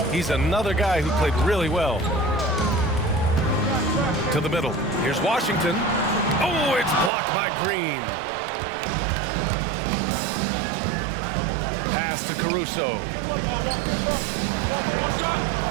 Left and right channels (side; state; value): left; drops out; at 7.1 s